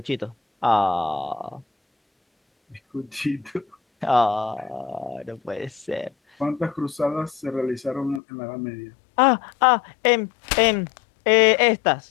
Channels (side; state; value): right; drops out; at 8.2 s